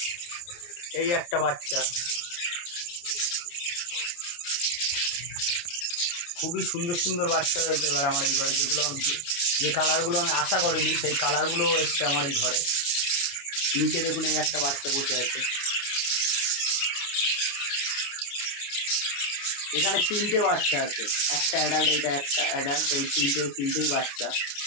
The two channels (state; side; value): late; right; 29 ms